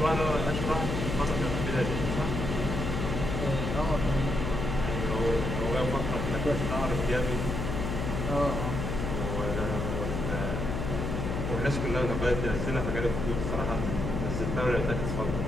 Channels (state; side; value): noise; left; hum, 2 dB below the sound